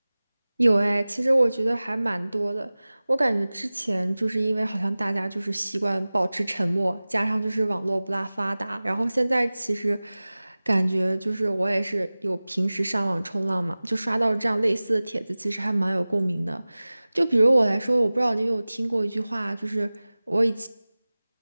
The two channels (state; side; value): inverted; both; correlation -0.99